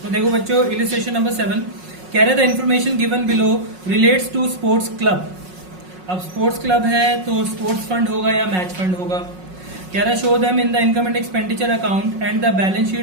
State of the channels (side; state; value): left; late; 5.5 ms